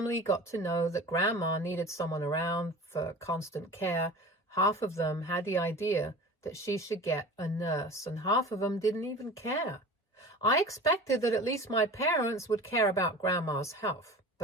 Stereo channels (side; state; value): both; normal; correlation 0.37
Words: got to know that Grandma needed someone around for constant care, half of them had the idea that she should get a nurse, and half of them didn't even care. I expected that at least my parents would care about Grandma's health,